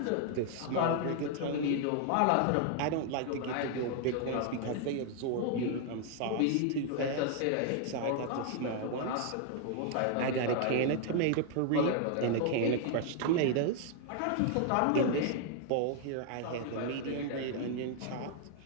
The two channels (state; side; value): different; both; correlation 0.00